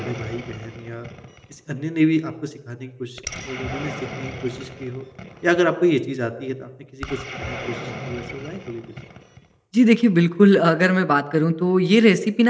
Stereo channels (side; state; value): both; identical; correlation 1.00